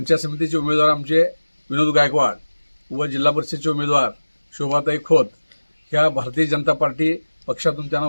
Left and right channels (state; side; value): inverted; both; correlation -1.00